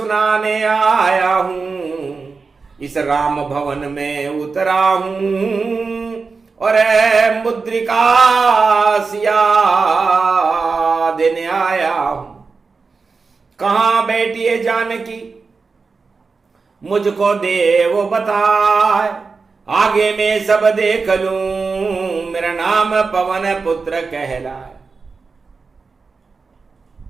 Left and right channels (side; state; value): left; quieter; 4.6 dB